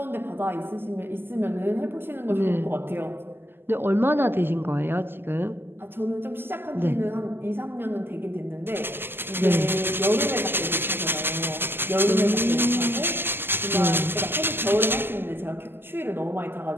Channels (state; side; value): late; left; 0.10 ms